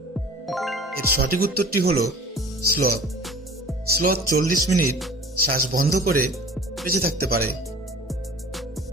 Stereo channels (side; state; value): both; normal; correlation 0.43